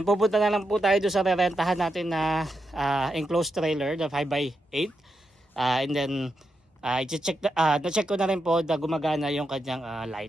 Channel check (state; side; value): normal; both; correlation 0.85